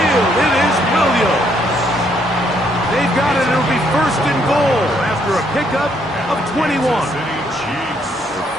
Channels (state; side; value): normal; both; correlation 0.71